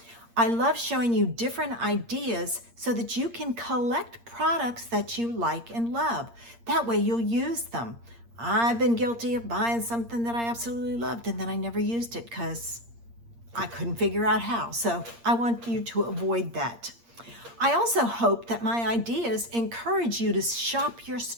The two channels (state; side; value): late; left; 8.6 ms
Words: I love showing you different ideas so that you can collect products that you like and love. That way you'll use them. I've been guilty of buying something that I absolutely loved and then I never used it because I couldn't figure out how. So I want you to avoid that. I also hope that my ideas encourage you to shop your